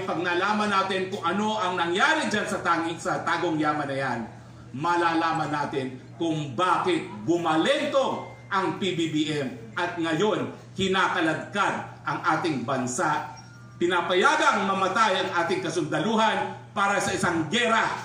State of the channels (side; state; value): both; identical; correlation 1.00